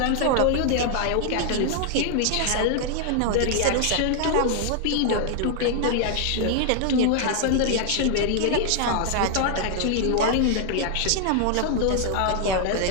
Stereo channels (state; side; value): different; both; correlation 0.00